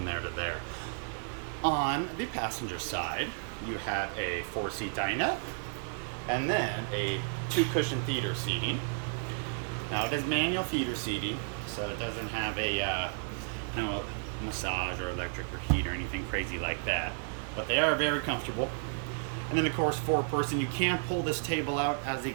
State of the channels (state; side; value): silent; left; 56 dB below the other